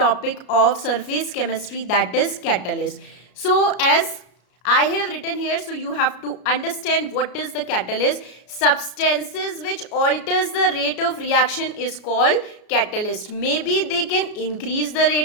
of surface chemistry, that is catalyst. So, as I have written here, so you have to understand what is the catalyst. Substances which alters the rate of reaction is called catalyst. Maybe they can increase the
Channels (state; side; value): late; right; 33 ms